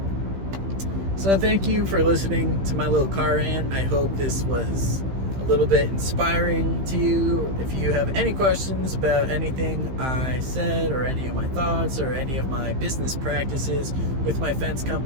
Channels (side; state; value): left; late; 15 ms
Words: So thank you for listening to my little car rant. I hope this was a little bit inspiring to you. If you have any questions about anything I said or any of my thoughts or any of my business practices with my fence